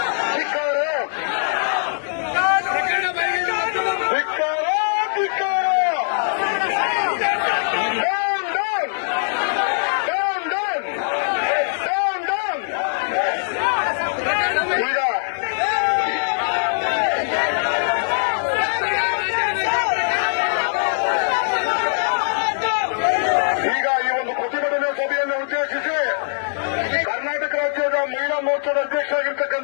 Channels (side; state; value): right; silent; digital silence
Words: ಧಿಕ್ಕಾರ, ಧಿಕ್ಕಾರ, ಧಿಕ್ಕಾರ. ಕರ್ನಾಟಕ ರಾಜ್ಯದ ಮಹಿಳಾ ಮೋರ್ಚಾದ